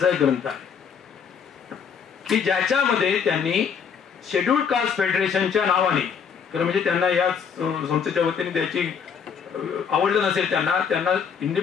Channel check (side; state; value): right; quieter; 6.9 dB